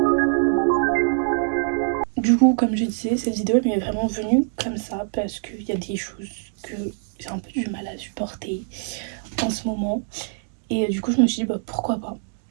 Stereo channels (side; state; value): left; silent; digital silence